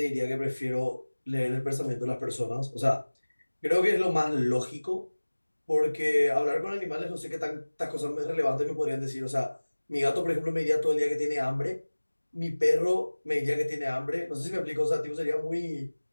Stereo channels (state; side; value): inverted; both; correlation -1.00